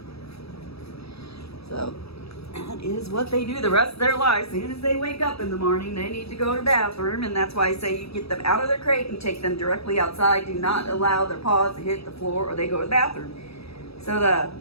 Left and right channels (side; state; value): right; late; 0.78 ms